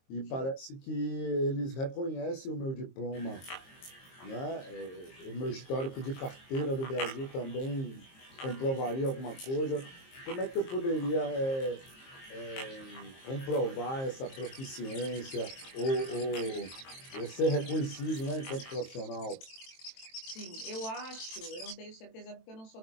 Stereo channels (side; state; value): right; late; 23 ms